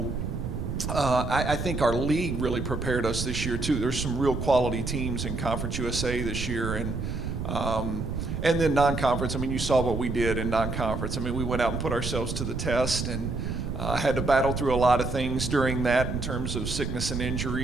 I think our league really prepared us this year too. There's some real quality teams in Conference USA this year. And then non-conference, you saw what we did in non-conference. we went out and put ourselves to the test, and had to battle through a lot of things during that in terms of sickness and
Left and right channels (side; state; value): right; noise; rumble, 4 dB below the sound